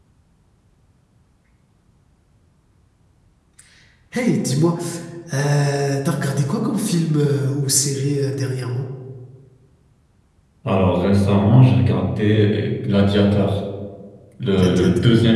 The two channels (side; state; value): both; identical; correlation 1.00